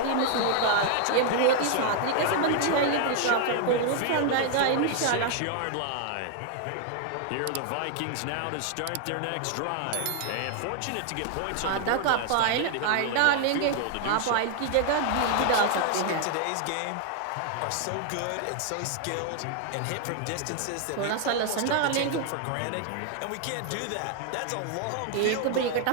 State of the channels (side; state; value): both; different; correlation 0.00